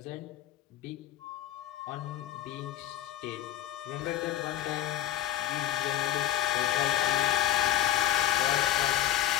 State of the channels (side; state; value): right; quieter; 12.5 dB